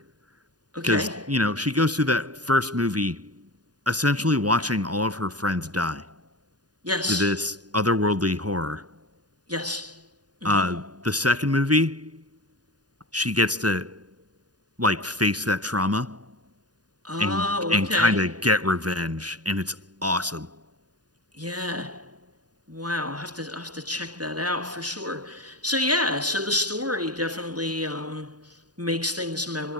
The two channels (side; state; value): left; late; 0.69 ms